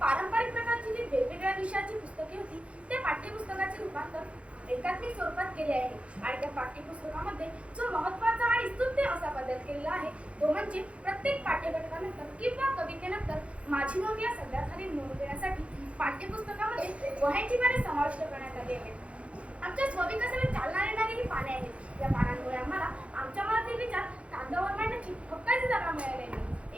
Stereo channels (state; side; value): late; left; 0.062 ms